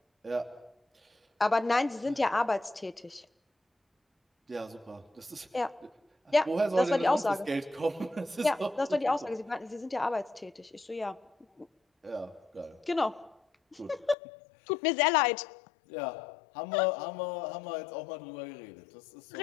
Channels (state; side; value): drops out; right; at 14.2 s